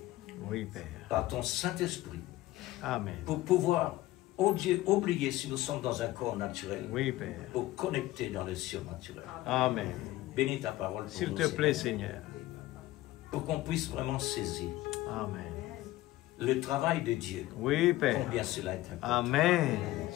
Oui, Père. par ton Saint-Esprit Amen. pour pouvoir, oh Dieu, oublier si nous sommes dans un corps naturel, Oui, Père. pour connecter dans le surnaturel. Amen. Bénis ta parole pour S'il nous, te plaît, Seigneur, Seigneur. pour qu'on puisse vraiment saisir Amen. le travail de Dieu, Oui, Père. combien cela est important. Amen.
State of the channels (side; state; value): right; quieter; 16.7 dB